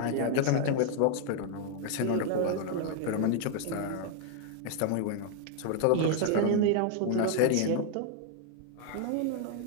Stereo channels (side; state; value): both; different; correlation 0.00